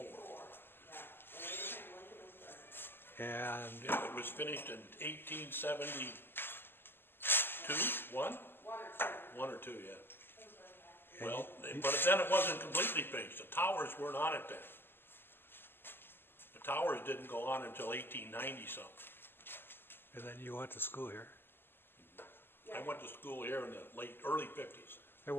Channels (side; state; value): right; late; 0.10 ms